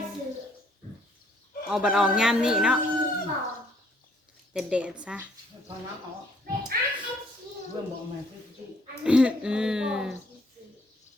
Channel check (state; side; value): normal; both; correlation 0.64